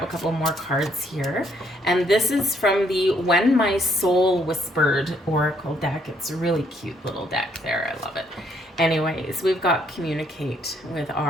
a couple more cards here. And this is from the When My Soul Whispered Oracle deck. It's a really cute little deck there. I love it. Anyways, we've got communicate with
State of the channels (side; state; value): both; normal; correlation 0.69